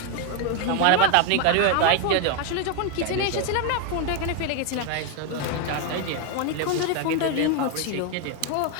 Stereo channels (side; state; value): both; different; correlation 0.01